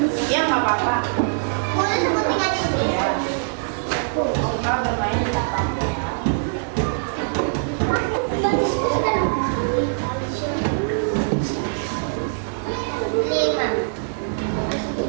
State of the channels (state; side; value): silent; left; digital silence